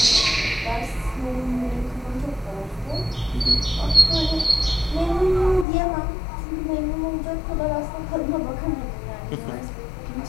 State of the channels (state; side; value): drops out; right; at 5.7 s